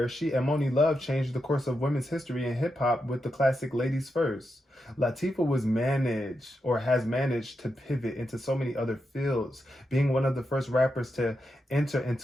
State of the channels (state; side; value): normal; both; correlation 0.86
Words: she and Moni Love changed the course of women's history in hip-hop with the classic Ladies First. Latifah has managed to pivot into so many other fields, being one of the first rappers to enter